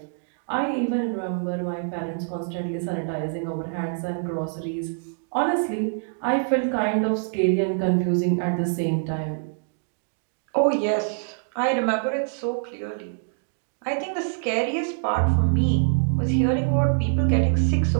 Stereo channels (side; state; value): left; silent; digital silence